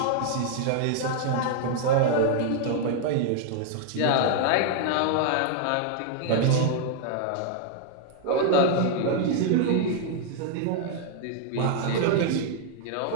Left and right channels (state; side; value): different; both; correlation 0.00